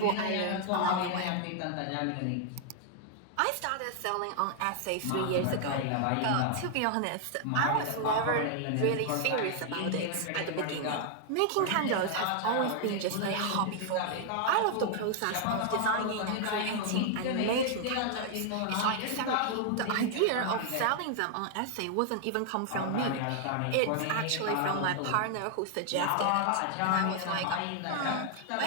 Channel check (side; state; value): both; different; correlation 0.00